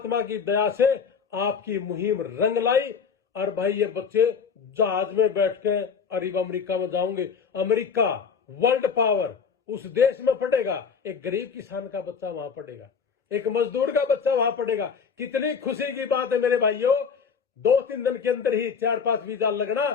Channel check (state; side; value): quieter; right; 6.2 dB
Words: की दया से आपकी मुहिम रंग लाई, और भाई ये बच्चे जहाज में बैठ के अरब अमेरिका में जाओगे। अमेरिका वर्ल्ड पावर उस देश में पड़ेगा, एक गरीब किसान का बच्चा वहां पड़ेगा, एक मजदूर का बच्चा वहां पड़ेगा। कितनी खुशी की बात है मेरे भाइयों। 2-3 दिन के अंदर ही 4-5 वीजा लगना,